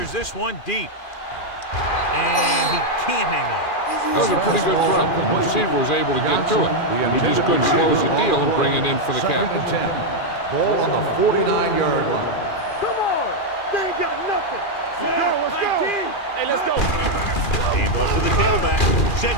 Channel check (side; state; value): right; late; 2.4 ms